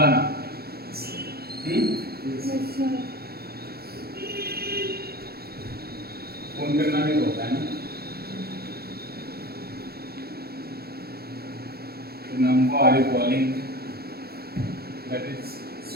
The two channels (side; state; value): left; late; 0.45 ms